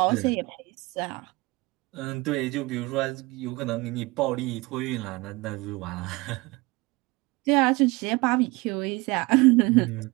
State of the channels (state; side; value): quieter; left; 23.6 dB